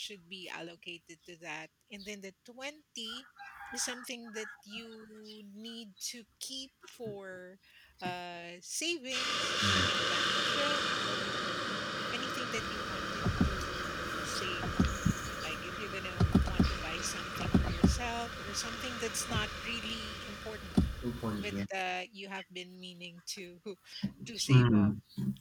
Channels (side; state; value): both; identical; correlation 1.00